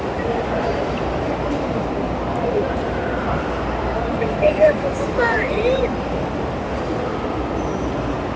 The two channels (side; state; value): both; identical; correlation 1.00